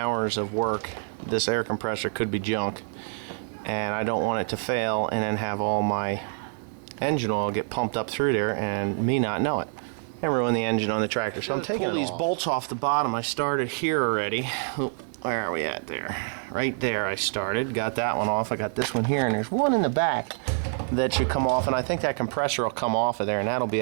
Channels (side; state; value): left; silent; digital silence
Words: of work, this air compressor could be junk, and I don't want it to fail and then have all my engine oil get pumped up through there and me not know it and ruin the engine on the tractor. So I'm taking these bolts off the bottom. I started here already. Where are we at there? Right there I started. Got that one off. I got this one here, and there's one in the back that should come off, and I think that compressor will come off of there, and that'll be